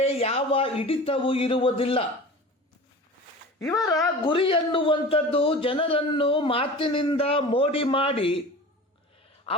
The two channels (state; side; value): normal; both; correlation 0.36